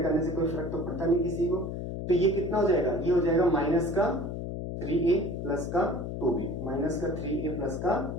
करने से कोई फर्क तो पड़ता नहीं किसी को। तो ये कितना हो जाएगा, ये हो जाएगा माइनस का 3a प्लस का 2b, माइनस का 3a प्लस का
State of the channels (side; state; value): left; noise; hum, 5 dB below the sound